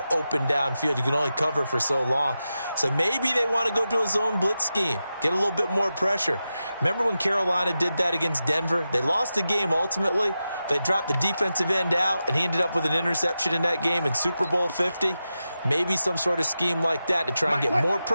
open downfield. You can only cover for so long. So maybe they want to go to a zone blitz scheme, get a little bit more pressure. Remember when Carolina did that against Denver? They lost the game ultimately. They dropped the defensive end out, and he ended up with an interception in that game in Super Bowl 50. Maybe some sort of scheme like that to try and get more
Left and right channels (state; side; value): inverted; both; correlation -0.91